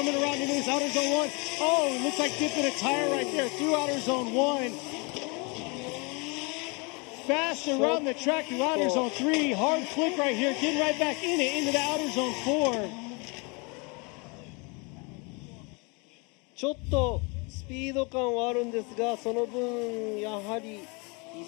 around into this outer zone 1. Oh, it looks like dipping a tire right there through outer zone 1. Fast around the track through outer zone 3. Hard flick right here, getting right back in it into the outer zone 4. ちょっとスピード感はあるんですが、その分やはり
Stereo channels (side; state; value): right; quieter; 30.4 dB